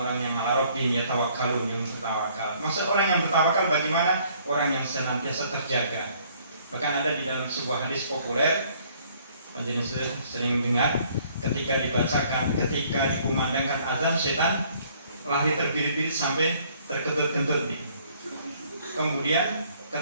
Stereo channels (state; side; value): inverted; both; correlation -0.61